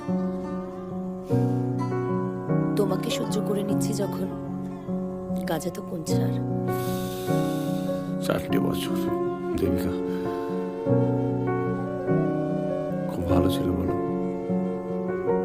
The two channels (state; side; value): identical; both; correlation 1.00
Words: তোমাকে সহ্য করে নিচ্ছি যখন, কাজে তো কোন ছাড়। 4টে বছর দেবিকা খুব ভালো ছিল বলো।